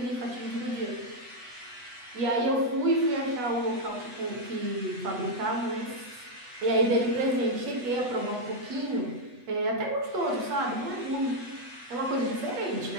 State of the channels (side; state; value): left; late; 8.1 ms